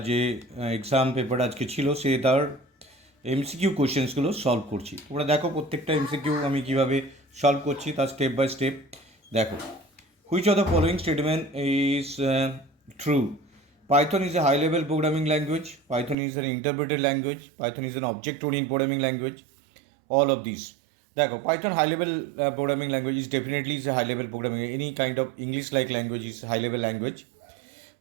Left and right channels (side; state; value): left; drops out; at 16.2 s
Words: যে এক্সাম পেপার আজকে ছিল সে তার এমসিকিউ কোশ্চেন্সগুলো সলভ করছি। তোমরা দেখো প্রত্যেকটা এমসিকিউ আমি কীভাবে সলভ করছি তার স্টেপ বাই স্টেপ দেখো। Which of the following statement is true? Python is a high-level programming language. Python is an interpreted language. Python is an object-oriented programming language. All of these. দেখো, Python high-level programming language is definitely is a high-level programming. Any kind of English-like language is high-level language.